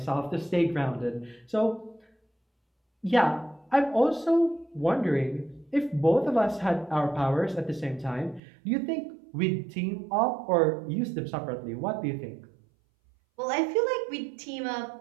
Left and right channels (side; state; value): left; drops out; at 8.4 s